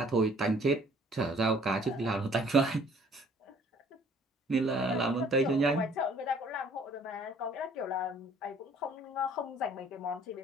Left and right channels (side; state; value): both; normal; correlation 0.56